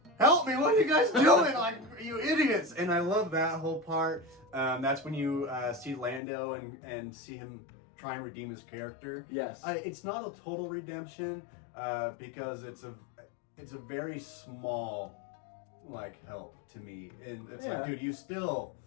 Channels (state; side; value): drops out; right; at 6.2 s